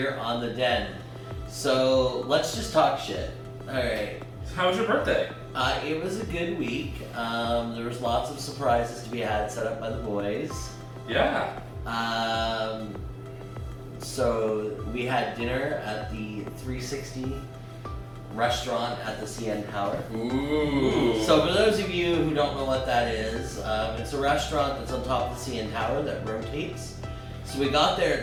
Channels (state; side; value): identical; both; correlation 1.00